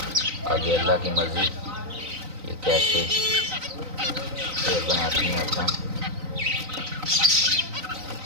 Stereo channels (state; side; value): late; left; 3.9 ms